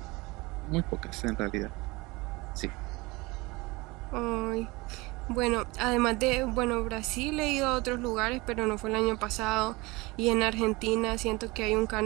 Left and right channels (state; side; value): quieter; left; 23.5 dB